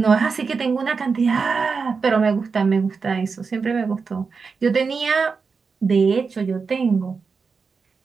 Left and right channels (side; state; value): left; quieter; 5.0 dB